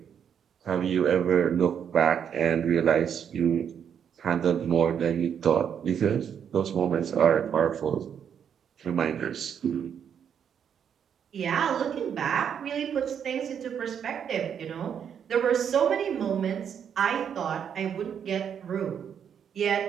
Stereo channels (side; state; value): left; quieter; 8.1 dB